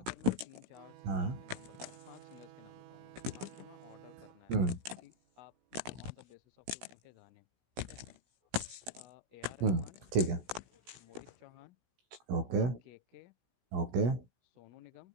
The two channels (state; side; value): late; left; 16 ms